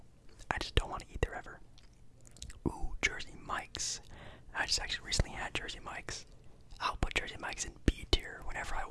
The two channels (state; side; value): identical; both; correlation 1.00